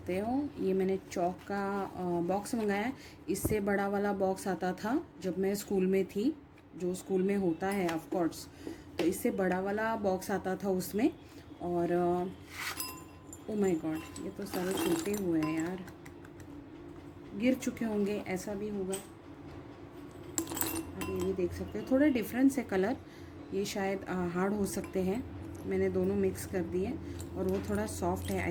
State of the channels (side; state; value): both; identical; correlation 1.00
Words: हो ये मैंने चौक का बॉक्स मंगाया है। इससे बड़ा वाला बॉक्स आता था जब मैं स्कूल में थी, जो स्कूल में होता है ऑफ कोर्स। तो इससे बड़ा वाला बॉक्स आता था उसमें। और ओ माय गॉड, ये तो सारे टूटे हुए हैं यार, गिर चुके होंगे, ऐसा भी होगा। आप ये भी देख सकते हो, थोड़ा डिफरेंस है कलर, ये शायद हार्ड हो सकते हैं। मैंने दोनों मिक्स कर दिए और वो थोड़ा सॉफ्ट है आई